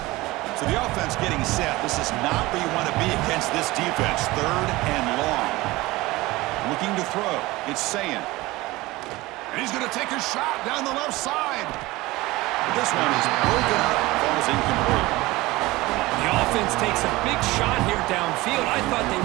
Getting set. This is not where you want to be against this defense. Third and long. Looking to throw. It's Sayin. And he's going to take a shot down the left side. But this one is broken up. Falls incomplete. The offense takes a big shot here downfield. I thought they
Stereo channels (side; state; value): left; quieter; 19.9 dB